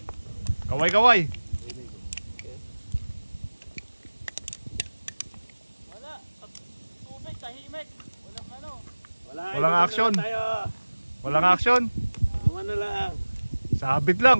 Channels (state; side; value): inverted; both; correlation -1.00